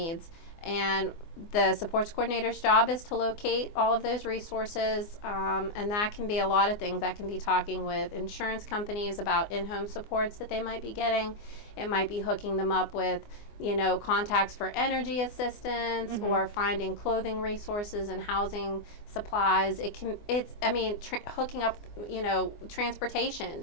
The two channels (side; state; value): right; late; 24 ms